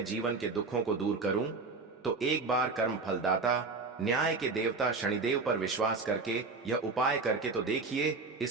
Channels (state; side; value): quieter; left; 4.1 dB